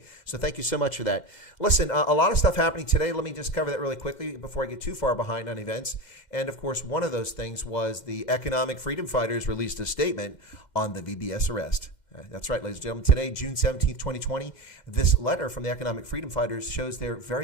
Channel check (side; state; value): right; late; 2.1 ms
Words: So thank you so much for that. Listen, a lot of stuff happening today. Let me just cover that really quickly before I get too far behind on events. And of course, one of those things was the Economic Freedom Fighters released a statement on the VBS arrest. That's right, ladies and gentlemen. Today, June 17th, 2020, this letter from the Economic Freedom Fighters shows they're very